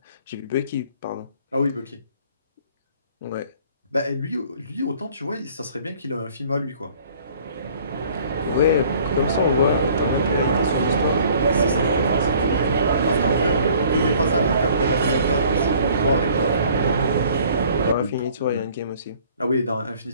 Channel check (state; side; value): inverted; both; correlation -0.55